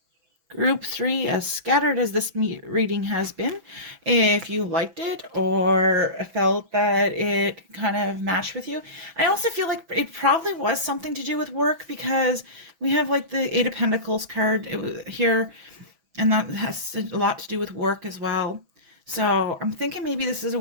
Group 3, as scattered as this reading has been, if you liked it or felt that it kind of matched with you. I also feel like it probably was something to do with work, because we have like the Eight of Pentacles card here, and that has a lot to do with work as well. So I'm thinking maybe this is a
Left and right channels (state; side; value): late; left; 6.1 ms